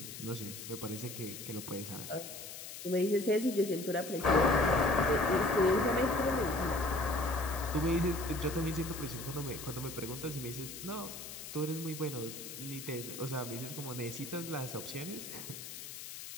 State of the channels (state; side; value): noise; left; hiss, 10 dB below the sound